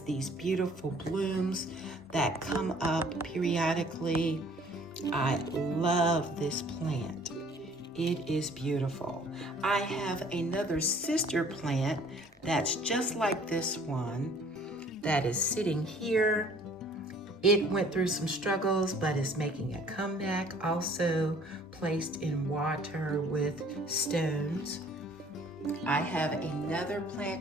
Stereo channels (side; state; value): both; normal; correlation 0.55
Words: these beautiful blooms that come up periodically. I love this plant. It is beautiful. I have another sister plant that's just like this one that is sitting here. It went through some struggles, but is making a comeback, also placed in water with stones. I have another